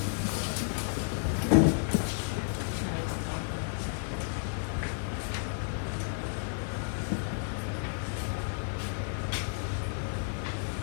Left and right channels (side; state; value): right; silent; 56 dB below the other